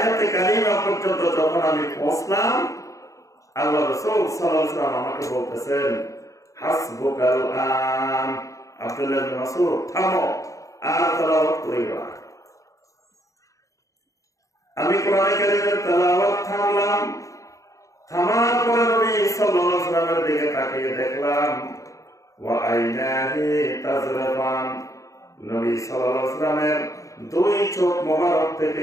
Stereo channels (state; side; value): late; right; 0.16 ms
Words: কারিমা পর্যন্ত যখন আমি পৌঁছলাম, আল্লাহ রাসূল সাল্লাল্লাহু আলাইহি ওয়াসাল্লাম আমাকে বলতেছেন, হাসবুকাল আন। আব্দুল্লাহ ইবনে মাসউদ, থামো, আর তেলাওয়াত করিও না। আমি কোরআনে কারীমের তেলাওয়াত থামলাম। থামার পরে নবী সাল্লাল্লাহু আলাইহি ওয়াসাল্লামের দিকে তাকিয়ে দেখলাম, ওয়া আইনাহি তাজরাফান, নবী সাল্লাল্লাহু আলাইহি ওয়াসাল্লামের দুই চোখ মোবারক